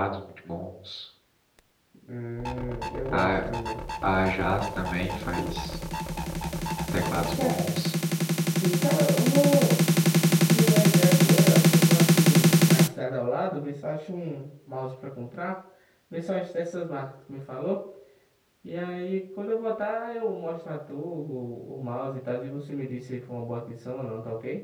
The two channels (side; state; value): both; identical; correlation 1.00